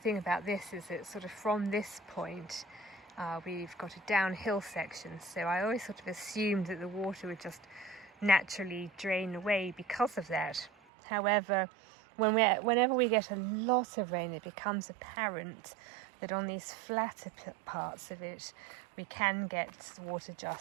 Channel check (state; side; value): drops out; left; at 10.7 s